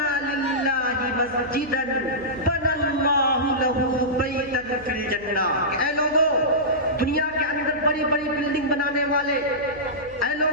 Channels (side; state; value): right; noise; hum, 22 dB below the sound